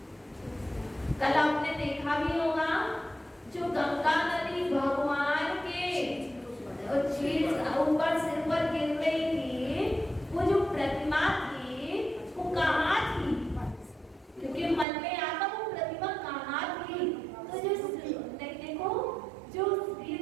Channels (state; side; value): drops out; left; at 14.9 s